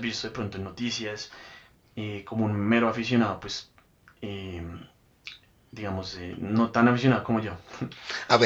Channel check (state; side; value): identical; both; correlation 1.00